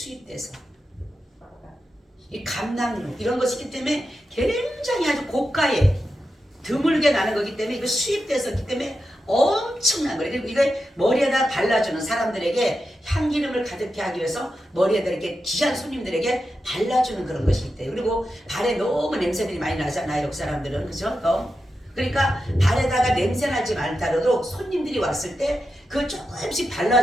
이 감남유 이런 것이기 때문에 굉장히 아주 고가에 드물게 나는 거기 때문에 이거 수입돼서 있기 때문에 엄청난 거예요. 그리고 이걸 머리에다 발라주는 사람들에게 향기름을 가득히 하기 위해서 머리에다 이렇게 귀한 손님들에게 발라주는 그런 것이 있대요. 그리고 발에 너무 냄새들이 많이 나잖아요. 그 사람들은. 그죠? 그러니까 발에다가 냄새 나지 말다라도 손님들이 왔을 때 그걸 조금씩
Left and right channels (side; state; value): both; normal; correlation 0.89